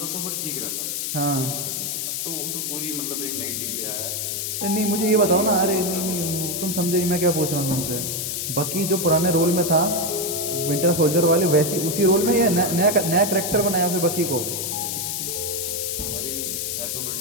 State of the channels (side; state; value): left; noise; hiss, 2 dB below the sound